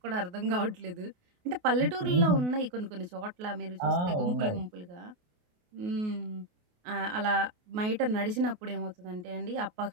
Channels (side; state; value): left; late; 28 ms